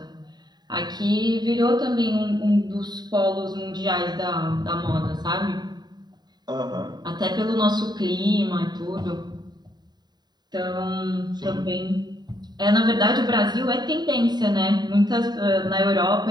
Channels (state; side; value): late; left; 0.20 ms